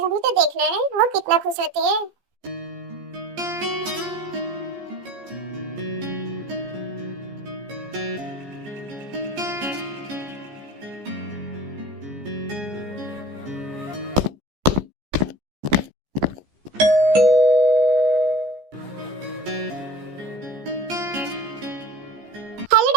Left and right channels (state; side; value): late; left; 14 ms